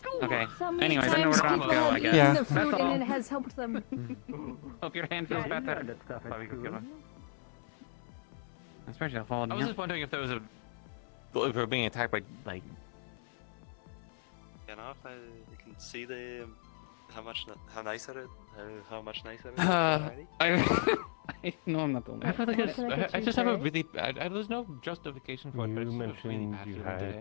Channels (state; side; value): silent; right; 55 dB below the other